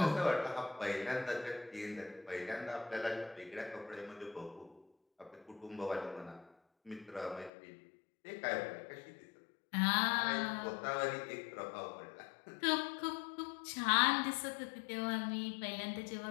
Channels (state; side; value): drops out; right; at 7.5 s